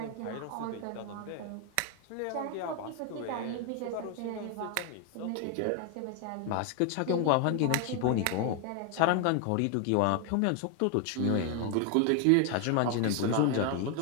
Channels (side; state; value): both; different; correlation 0.00